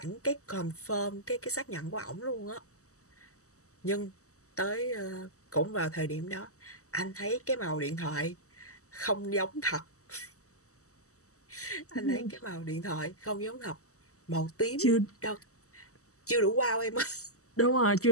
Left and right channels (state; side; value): late; right; 0.65 ms